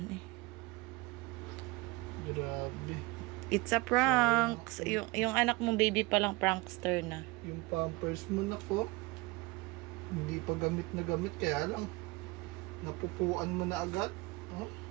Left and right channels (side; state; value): left; quieter; 23.6 dB